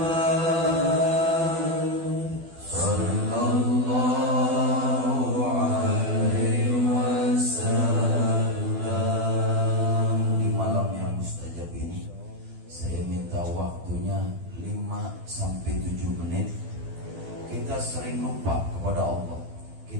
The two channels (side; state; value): left; late; 12 ms